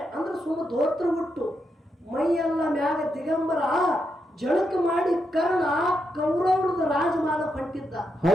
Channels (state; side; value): normal; both; correlation 0.83